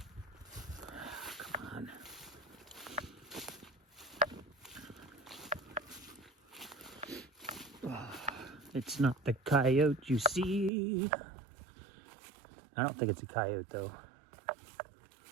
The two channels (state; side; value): drops out; left; at 10.7 s